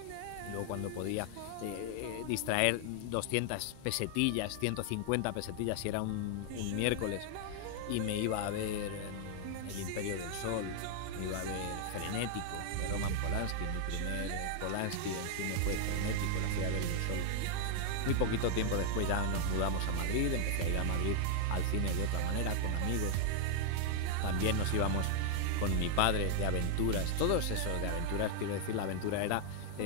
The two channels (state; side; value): different; both; correlation 0.00